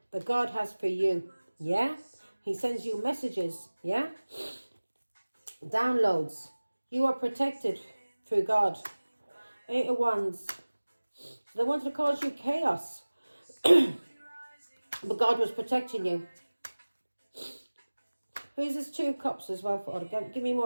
God has for you, yeah? He sends you messages, yeah? Downloads. You are protected through God. 8 of Wands. They wanted to cause you chaos. But God was protecting you. Who's this 2 of Cups as well? For give me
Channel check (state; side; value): inverted; both; correlation -1.00